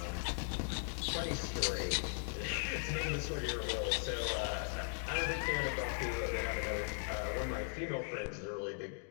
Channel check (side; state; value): right; silent; 52 dB below the other